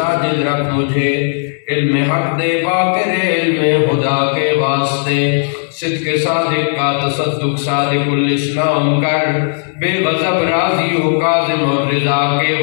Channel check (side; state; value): right; silent; digital silence